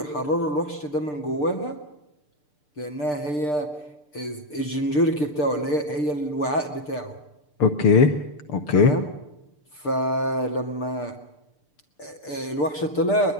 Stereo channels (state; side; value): late; right; 6.7 ms